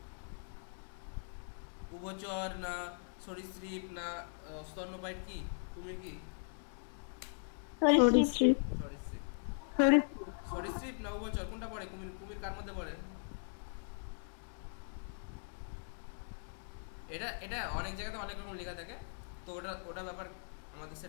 উভচর না সরীসৃপ না স্তন্যপায়ী? কি কুমির কি? সরীসৃপ না উভচর, কোনটা পড়ে? কুমির কুমির কার মধ্যে পড়ে? এটা অনেক জায়গাতে অনেক রকম লেখা থাকে, তো ওটা ব্যাপার আমাদের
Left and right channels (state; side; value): silent; right; digital silence